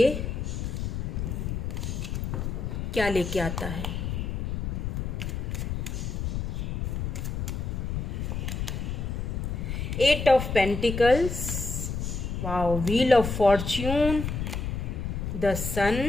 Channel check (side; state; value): left; noise; rumble, 3 dB below the sound